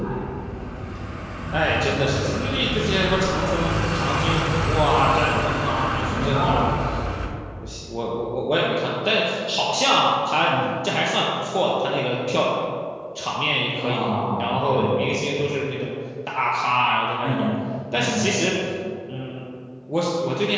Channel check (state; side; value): identical; both; correlation 1.00